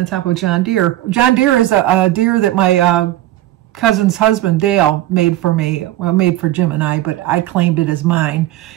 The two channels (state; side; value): quieter; left; 15.0 dB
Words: top of a John Deere. John Deere is a deer that my cousin's husband, Dale, made for me. Well, made for Jim and I, but I claimed it as mine.